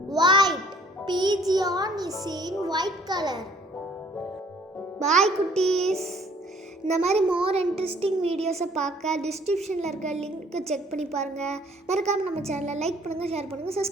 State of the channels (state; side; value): normal; both; correlation 0.58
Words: White. Pigeon is in white color. Bye குட்டீஸ். இந்த மாதிரி மோர் இன்ட்ரெஸ்டிங் வீடியோஸை பார்க்க டிஸ்கிரிப்ஷனில் இருக்க link check பண்ணி பாருங்கள். மறக்காமல் நம்ம சேனலை லைக் பண்ணுங்கள், ஷேர் பண்ணுங்கள்,